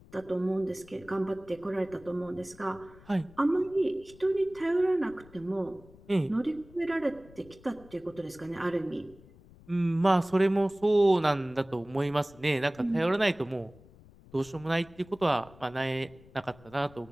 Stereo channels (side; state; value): left; noise; rumble, 23 dB below the sound